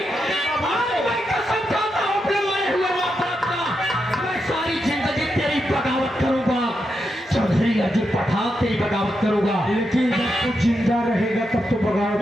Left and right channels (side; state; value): both; normal; correlation 0.85